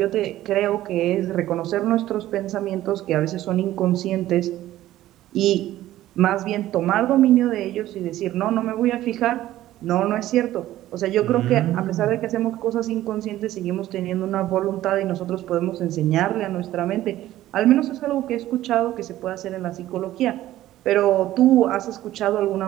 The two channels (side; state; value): left; quieter; 14.3 dB